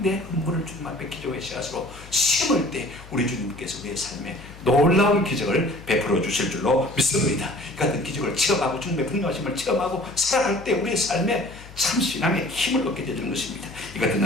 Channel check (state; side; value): noise; left; hum, 18 dB below the sound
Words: 내 헌물을 주님 앞에 기도의 씨앗으로 심을 때 우리 주님께서 내 삶에 놀라운 기적을 베풀어 주실 줄로 믿습니다. 이 같은 기적을 체험하고 주님의 분노하심을 체험하고 살아갈 때 우리의 삶에 참 신앙의 힘을 얻게 되는 것입니다. 이 같은